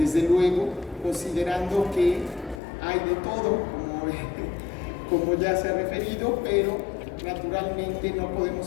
luego, considerando que hay de todo, como ya se ha referido, pero naturalmente no podemos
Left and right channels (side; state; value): right; drops out; at 2.6 s